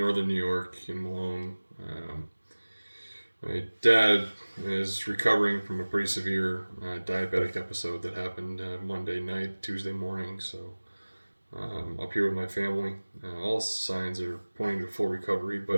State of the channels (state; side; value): inverted; both; correlation -1.00